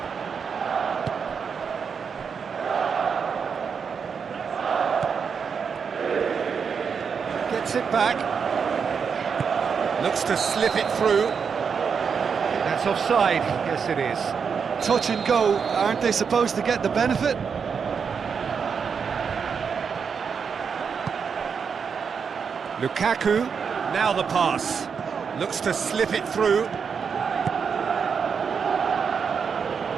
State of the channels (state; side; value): quieter; left; 6.2 dB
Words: Gets it back. Looks to slip it through. That's offside. Yes, it is. Touch and go. Aren't they supposed to get the benefit? Lukaku, now the pass. Looks to slip it through.